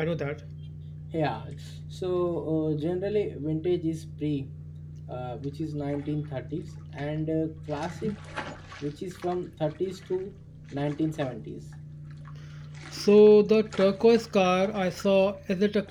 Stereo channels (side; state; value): both; identical; correlation 1.00